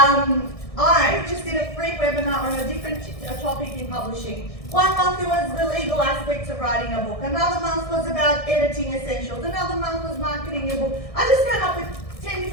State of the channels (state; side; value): late; right; 1.6 ms